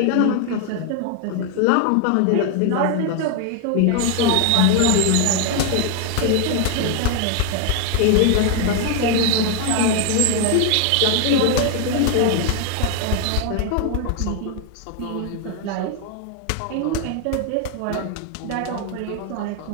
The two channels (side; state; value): both; different; correlation 0.00